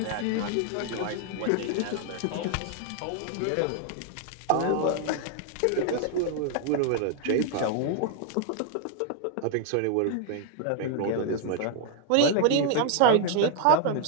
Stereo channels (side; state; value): both; different; correlation 0.00